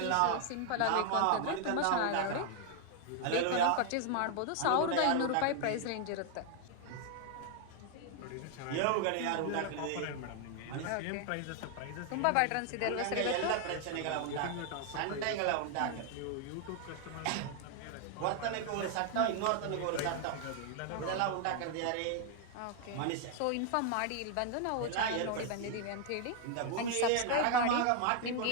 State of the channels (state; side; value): different; both; correlation 0.00